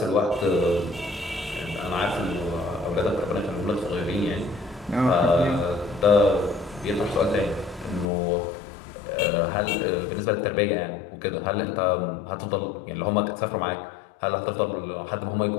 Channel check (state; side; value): drops out; right; at 8.1 s